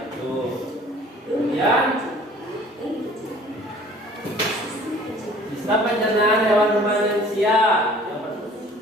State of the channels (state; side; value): normal; both; correlation 0.51